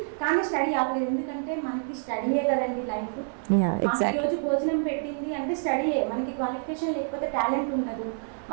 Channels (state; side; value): silent; left; 60 dB below the other